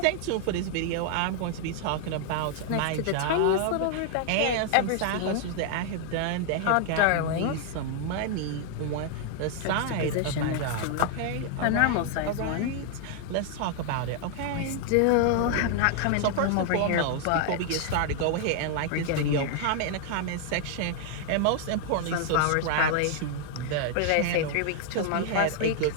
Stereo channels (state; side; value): different; both; correlation 0.00